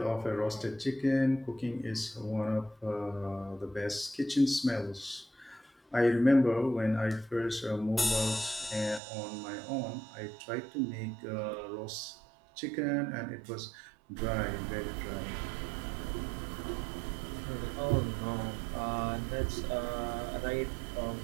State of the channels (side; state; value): left; drops out; at 9.0 s